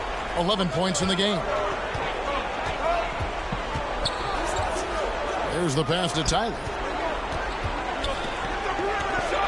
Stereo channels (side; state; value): both; identical; correlation 1.00